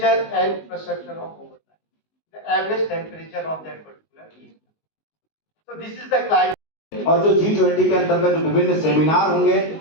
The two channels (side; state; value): right; late; 19 ms